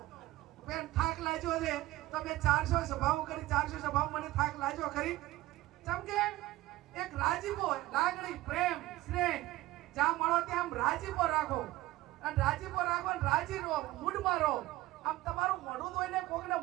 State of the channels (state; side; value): quieter; left; 17.5 dB